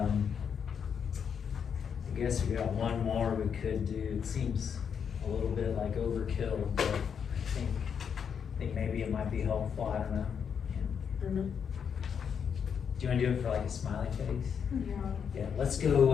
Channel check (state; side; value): quieter; right; 7.2 dB